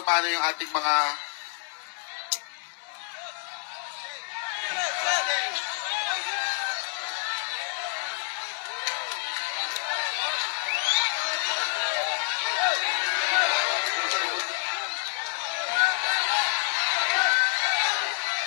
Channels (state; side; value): silent; right; digital silence